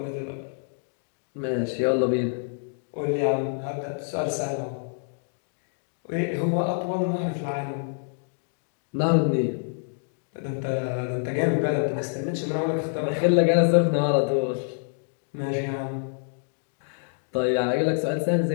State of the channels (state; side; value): silent; right; digital silence